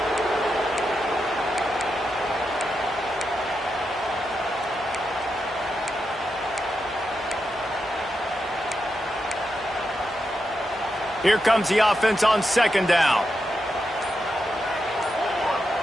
Here comes the offense on 2nd down.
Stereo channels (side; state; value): both; normal; correlation 0.86